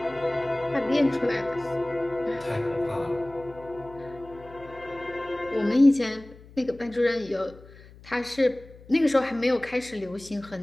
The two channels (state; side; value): noise; left; hum, 21 dB below the sound